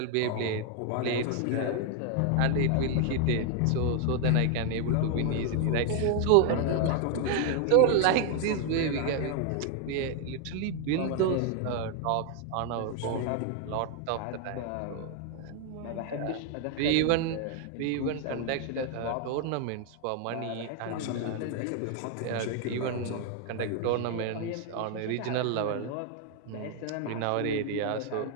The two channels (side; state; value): both; different; correlation 0.00